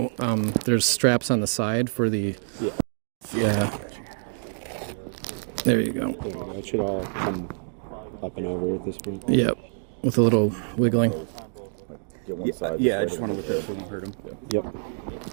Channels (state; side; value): silent; left; digital silence